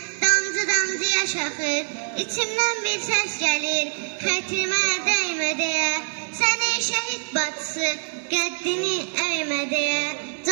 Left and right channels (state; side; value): silent; left; 62 dB below the other